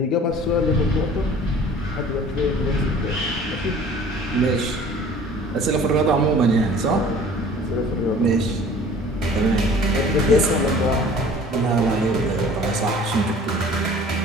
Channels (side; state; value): both; normal; correlation 0.48